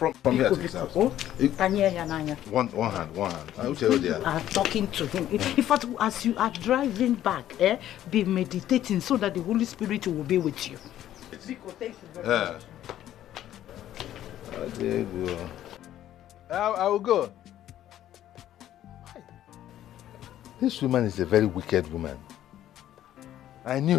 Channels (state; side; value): quieter; right; 12.2 dB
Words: here to his house. One hand. I will tell you there. You are talking to him. In fact, as you are driving back, be meditating so that the Holy Spirit will be with you. Biko, thank you very much. There you go. I will go. This woman is a very wicked woman. I